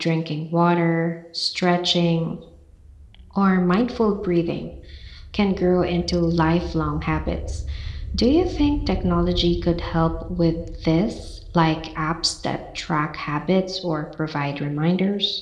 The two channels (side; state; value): both; identical; correlation 1.00